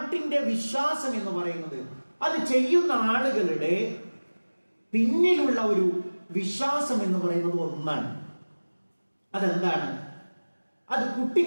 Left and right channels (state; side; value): inverted; both; correlation -1.00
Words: വിശ്വാസം എന്ന് പറയുന്നത് അത് ചെയ്യുന്ന ആളുകളുടെ പിന്നിലുള്ള ഒരു വിശ്വാസം എന്ന് പറയുന്നത് ഒന്നാണ്. അതെന്താണ്? അത്